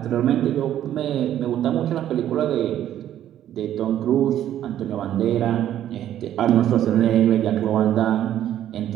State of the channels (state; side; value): quieter; left; 11.5 dB